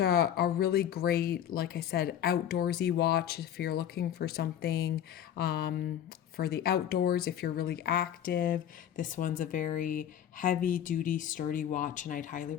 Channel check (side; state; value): right; quieter; 10.1 dB